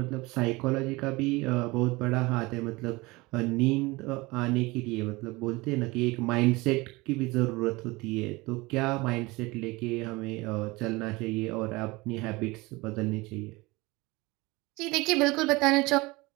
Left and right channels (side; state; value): left; quieter; 22.8 dB